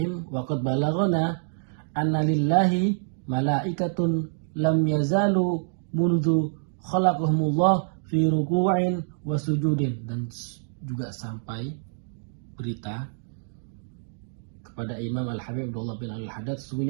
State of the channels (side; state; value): left; silent; digital silence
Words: Wa qad balaghana anna lillahi malaikatun lam yazalu mundu khalaqahumullah fi ruku'in wa sujudin. Dan juga sampai berita kepada Imam Al-Habib Abdullah bin Al-Haddad,